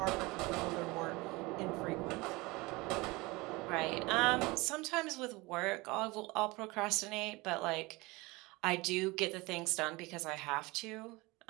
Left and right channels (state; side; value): quieter; left; 23.2 dB